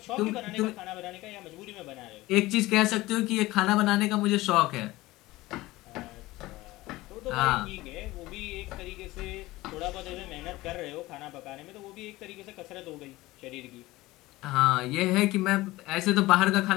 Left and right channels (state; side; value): quieter; right; 18.9 dB